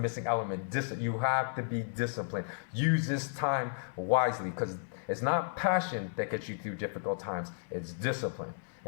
element. You have to be disciplined. Use this time wisely, because it's not passion that gets you through difficult times. It's discipline.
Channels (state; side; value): silent; right; digital silence